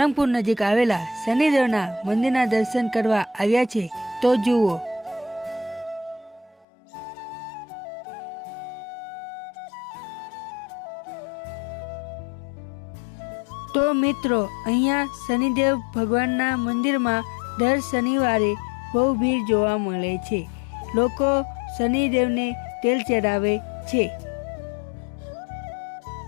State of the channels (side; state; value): right; drops out; at 6.7 s